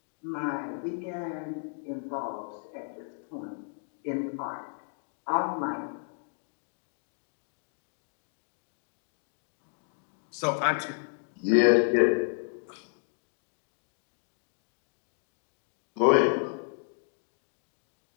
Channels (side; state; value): right; silent; digital silence